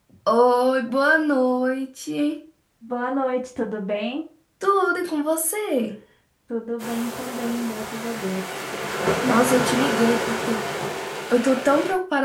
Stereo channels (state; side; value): identical; both; correlation 1.00